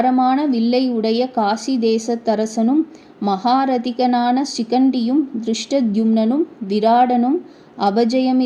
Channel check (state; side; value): identical; both; correlation 1.00